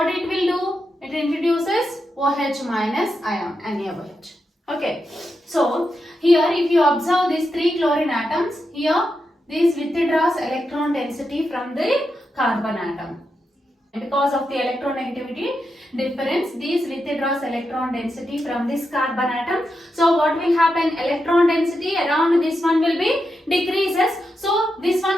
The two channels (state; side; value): normal; both; correlation 0.86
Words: it will do? It introduces OH minus ion, NaOH. Okay, so here if you observe these 3 chlorine atoms, here this withdraws electron density from the carbon atom. Because of the electronegativity difference, this withdraws electron density from this carbon atom. So what will happen? Electron density around this one will be decreases. So this one